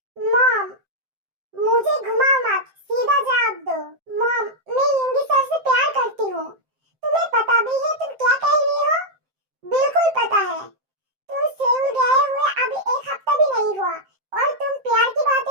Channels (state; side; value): late; left; 7.7 ms